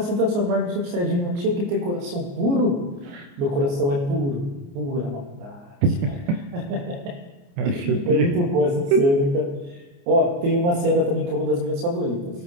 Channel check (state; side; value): late; left; 29 ms